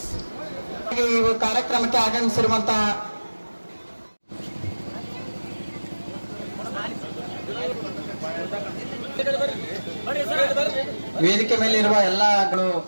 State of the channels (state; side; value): inverted; both; correlation -1.00